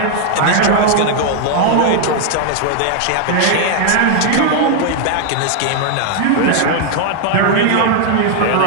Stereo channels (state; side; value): different; both; correlation 0.00